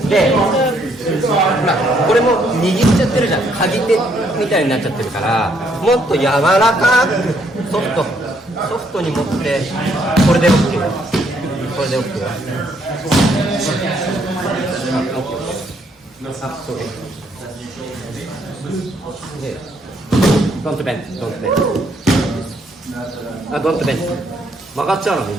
で、これも握っちゃってるじゃん。鍵手みたいになっちゃってるから、もっと柔らかくソフトに持って、これで OK。これで OK。そうです。で、don't bend。don't bend。曲がっちゃうのみん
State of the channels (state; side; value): normal; both; correlation 0.70